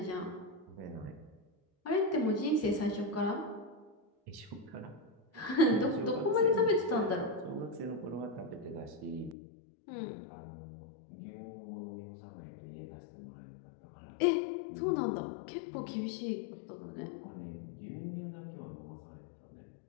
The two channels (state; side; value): drops out; right; at 9.3 s